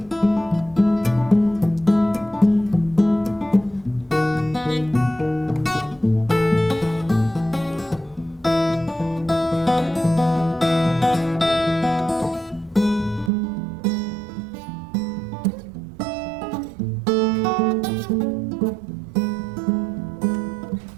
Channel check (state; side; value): drops out; left; at 13.3 s